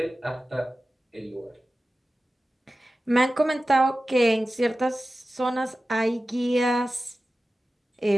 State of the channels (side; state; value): both; normal; correlation 0.95